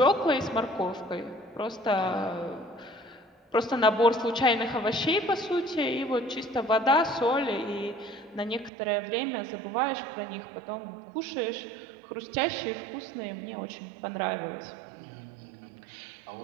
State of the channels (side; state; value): left; drops out; at 8.7 s